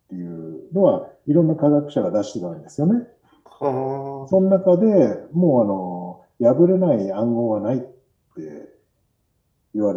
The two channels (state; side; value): identical; both; correlation 1.00